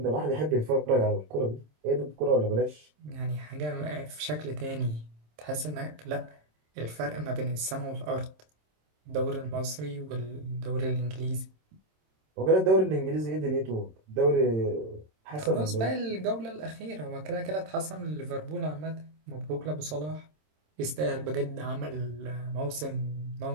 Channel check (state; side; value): late; left; 26 ms